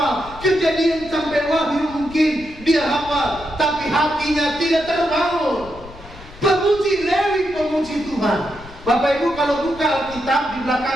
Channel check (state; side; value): noise; left; rumble, 18 dB below the sound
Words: Kejadian sampai Wahyu mungkin dia hafal, tapi hatinya tidak terbangun. Pemuji Lewi, pemuji Tuhan. Bapak Ibu kalau buka Alkitab, di